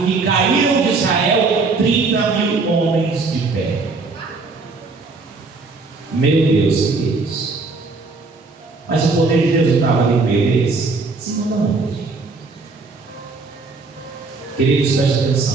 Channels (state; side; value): quieter; left; 4.0 dB